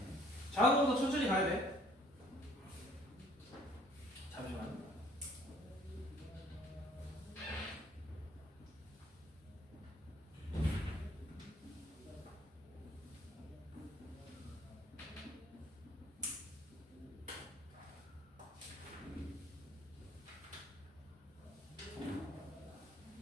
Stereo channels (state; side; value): normal; both; correlation 0.59